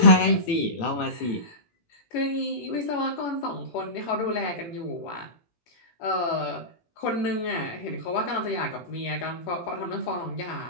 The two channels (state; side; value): late; right; 17 ms